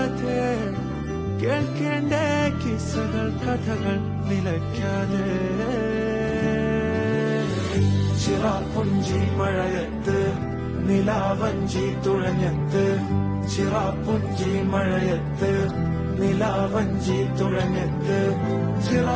കേൾക്കേണ്ട കിസ്സകൾ കഥകൾ നിലയ്ക്കാതെ ചിറാപ്പുഞ്ചി മഴയത്ത് നിലാവഞ്ചി തുഴഞ്ഞത്ത് ചിറാപ്പുഞ്ചി മഴയത്ത് നിലാവഞ്ചി തുഴഞ്ഞത്ത്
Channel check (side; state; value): both; identical; correlation 1.00